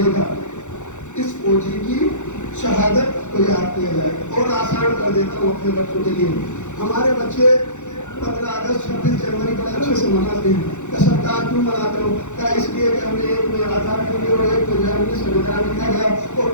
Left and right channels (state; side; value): late; right; 0.84 ms